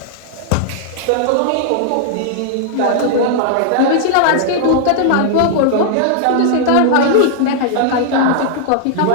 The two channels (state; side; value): different; both; correlation -0.01